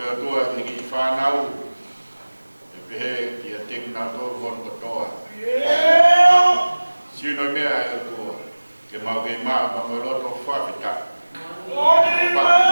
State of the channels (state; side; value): inverted; both; correlation -1.00